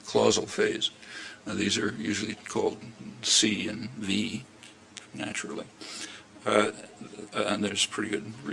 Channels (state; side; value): identical; both; correlation 1.00